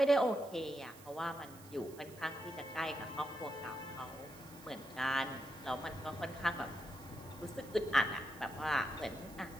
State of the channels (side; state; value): right; noise; hiss, 20 dB below the sound